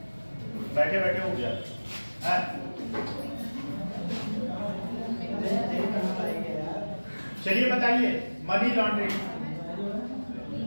बैठे बैठे हो गया है। चलिए बताइए मनी लॉन्ड्रिंग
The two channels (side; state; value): both; inverted; correlation -1.00